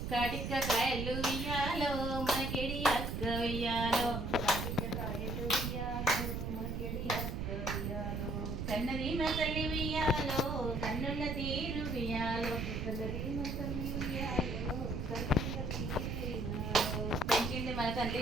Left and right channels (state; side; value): noise; right; rumble, 2 dB below the sound